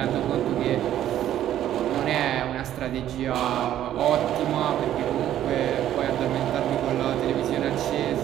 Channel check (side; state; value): left; quieter; 11.8 dB